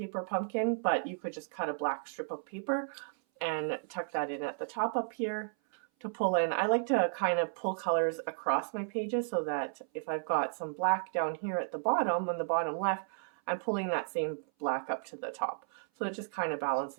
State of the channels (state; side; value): silent; left; 55 dB below the other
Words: pumpkin, but you could just cut a black strip of paper and tuck that in at the top up here to pull in. I like to kind of pull colors across my pages so that if I've got some black down here at the bottom, on the bottom left, I'm pulling that same black up to the top. So it just kind of